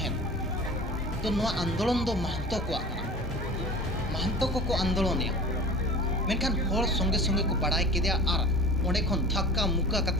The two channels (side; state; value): both; normal; correlation 0.38